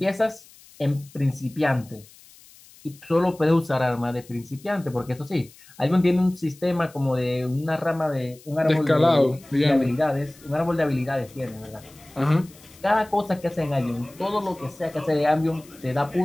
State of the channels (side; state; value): left; noise; hiss, 24 dB below the sound